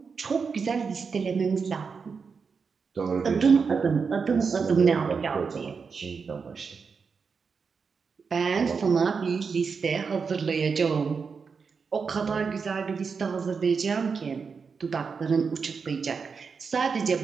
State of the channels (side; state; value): left; quieter; 5.4 dB